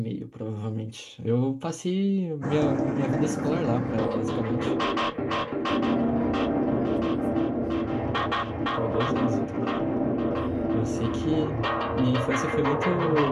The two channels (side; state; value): both; identical; correlation 1.00